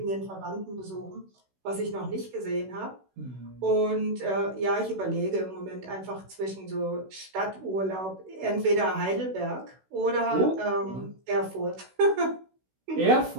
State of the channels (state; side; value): late; left; 16 ms